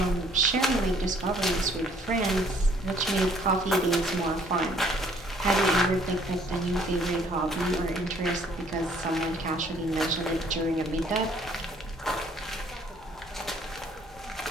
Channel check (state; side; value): normal; both; correlation 0.61